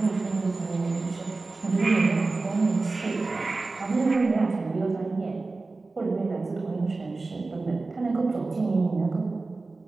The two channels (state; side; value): quieter; left; 3.6 dB